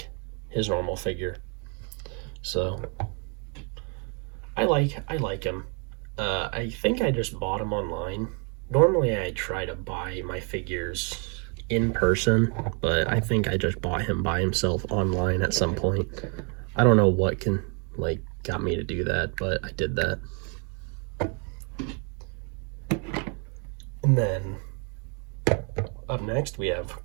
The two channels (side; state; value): left; quieter; 37.3 dB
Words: his normal figure, so I like him. I think I just bought him online. Normally I try to buy my figures in person, but I think I just bought him by himself online at some point. I don't know what got me to do that, but I did that. And then up next we have